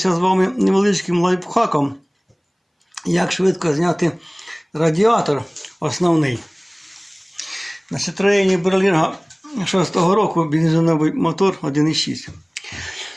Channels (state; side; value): identical; both; correlation 1.00